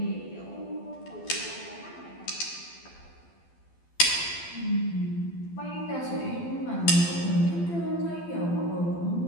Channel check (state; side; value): late; right; 12 ms